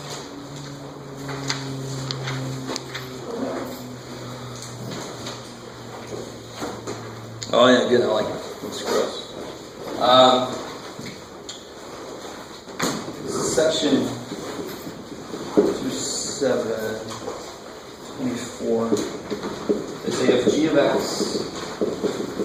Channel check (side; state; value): both; identical; correlation 1.00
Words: Oh yeah, good. I like it. It's gross. Section 2.7.24. They say if g of x